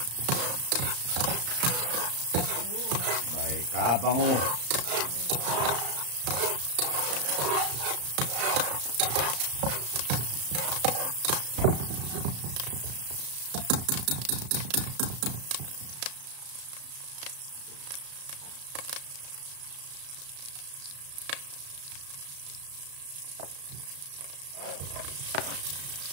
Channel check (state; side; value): late; left; 35 ms